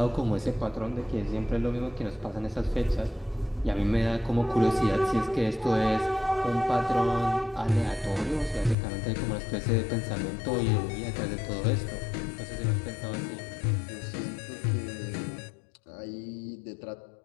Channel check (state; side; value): drops out; right; at 8.8 s